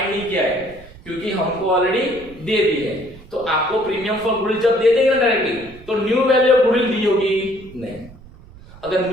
नहीं किया है क्योंकि हमको ऑलरेडी दे दी है। तो आपको प्रीमियम फॉर गुडविल जब दे देंगे ना डायरेक्टली, तो न्यू वैल्यू ऑफ गुडविल दी होगी नहीं। अगर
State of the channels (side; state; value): right; noise; rumble, 21 dB below the sound